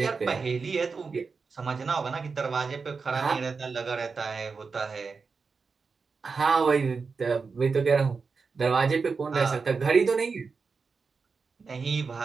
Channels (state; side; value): quieter; left; 4.9 dB